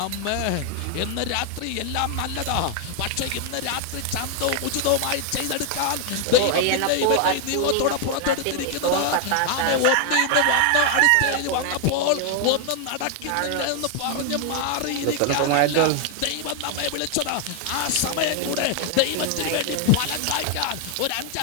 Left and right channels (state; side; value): different; both; correlation 0.00